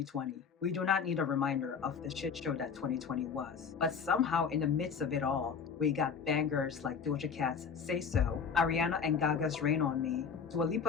We do not need a reminder of the shit show that 2020 was. But somehow in the midst of it all, we got bangers like Doja Cat's Say So, Ariana and Gaga's Rain on Me, Dua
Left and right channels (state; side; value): quieter; right; 6.3 dB